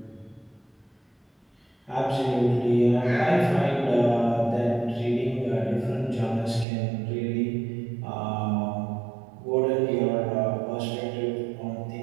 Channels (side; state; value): left; drops out; at 6.7 s